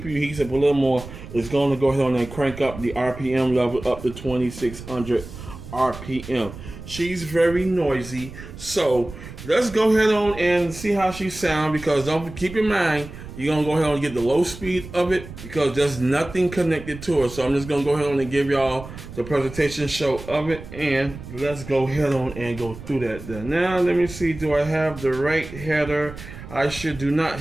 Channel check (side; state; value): right; noise; rumble, 13 dB below the sound